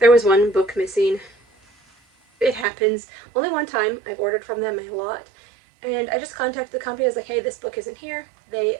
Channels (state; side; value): drops out; left; at 2.7 s